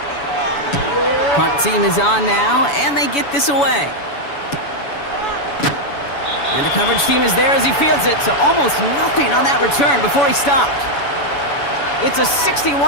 Punt team is on now, and they get this away. And the coverage team is there as he fields it, so almost nothing on that return before he stopped. It's a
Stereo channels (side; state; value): right; late; 7.0 ms